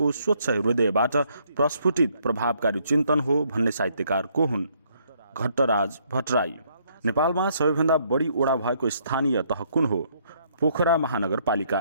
स्वच्छ हृदयबाट प्रस्फुटित प्रभावकारी चिन्तन हो भन्ने साहित्यकार को हुन्? घट्टराज भट्टराई। नेपालमा सबैभन्दा बढी ओडा भएको स्थानीय तह कुन हो? पोखरा महानगरपालिका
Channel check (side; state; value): both; inverted; correlation -0.69